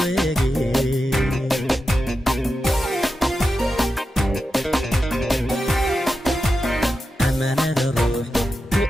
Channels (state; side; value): normal; both; correlation 0.90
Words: amanada ruux ku